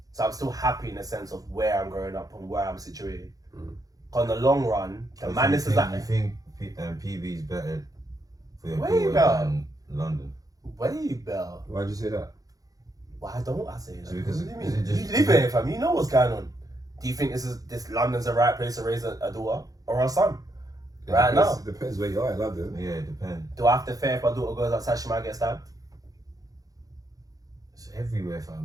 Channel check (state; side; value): late; left; 0.17 ms